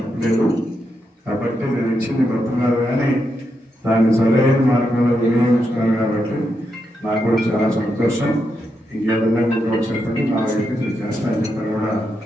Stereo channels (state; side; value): normal; both; correlation 0.83